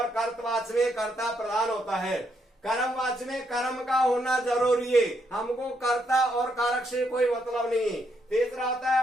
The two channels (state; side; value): normal; both; correlation 0.76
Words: कर्तवाच्य में कर्ता प्रधान होता है। कर्मवाच्य में कर्म का होना जरूरी है, हमको कर्ता और कारक से कोई मतलब नहीं। तीसरा होता